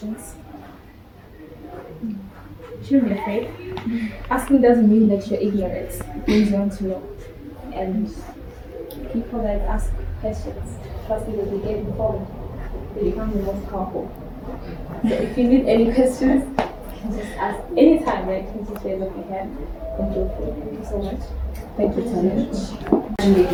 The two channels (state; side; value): identical; both; correlation 1.00